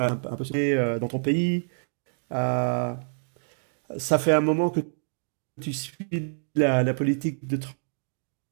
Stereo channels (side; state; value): left; silent; digital silence